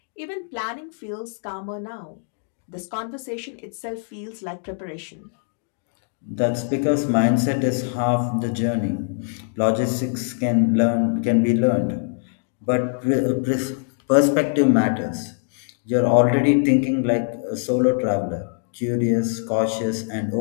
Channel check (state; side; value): silent; right; digital silence